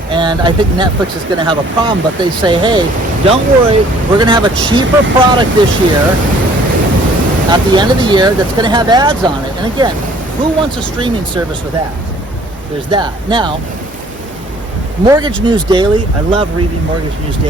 and I think Netflix is going to have a problem, but they say, hey, don't worry, we're going to have a cheaper product this year at the end of the year that's going to have ads on it. And again, who wants a streaming service with ads? There's that. Now, Mortgage News Daily, I love reading Mortgage News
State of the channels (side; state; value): both; normal; correlation 0.56